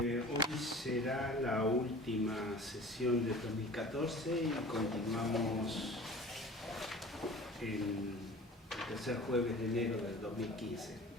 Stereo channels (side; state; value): both; normal; correlation 0.42